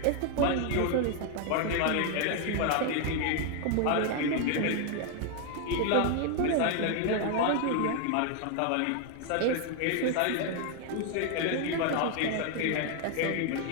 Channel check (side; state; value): both; different; correlation 0.00